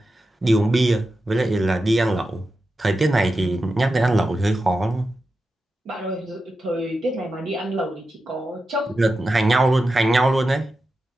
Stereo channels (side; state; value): both; normal; correlation 0.91